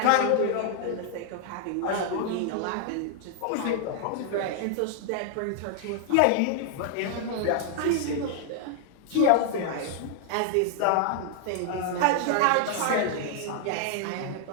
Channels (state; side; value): different; both; correlation 0.00